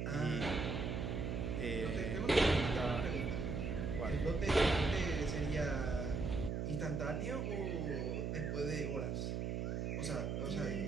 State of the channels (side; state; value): right; noise; hum, 1 dB below the sound